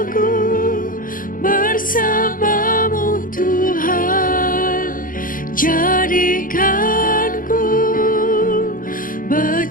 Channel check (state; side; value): late; right; 0.40 ms